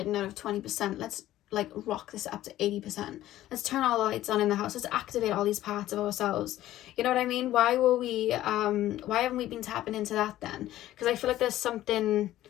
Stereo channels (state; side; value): quieter; right; 14.1 dB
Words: out of 20%? Let's like rock this up to 80%. Let's turn all the lights on in the house. Let's activate all these parts of ourselves. You know what I mean? Why haven't we been tapping into that then? Because I feel like there's something